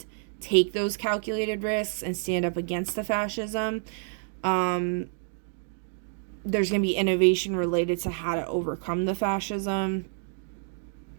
take those calculated risks and stand up against the fascism, there's going to be innovation related to how to overcome the fascism.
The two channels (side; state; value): left; silent; 59 dB below the other